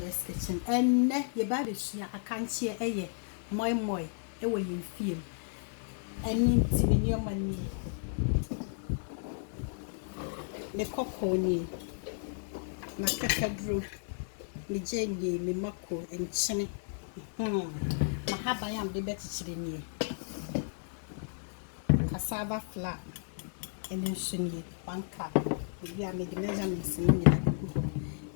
kitchen. And your baby, Akanche, Moi Moi, away you feel. And in your money. The cockony, my cacadro, me jenny, me mako, and chinny. My habayam the better chilling. Cassava flat, and then shiny, 1 cup. We are making measurements in the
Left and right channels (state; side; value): silent; right; digital silence